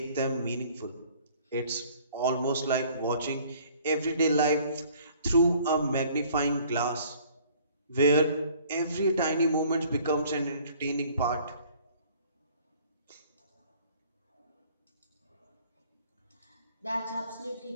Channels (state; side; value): inverted; both; correlation -0.55